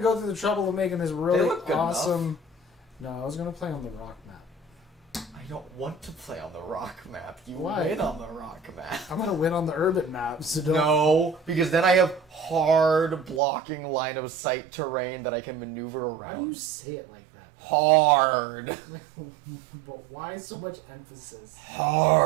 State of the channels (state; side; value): drops out; left; at 13.4 s